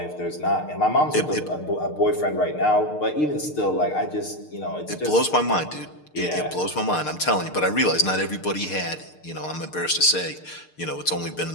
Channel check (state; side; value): late; right; 6.6 ms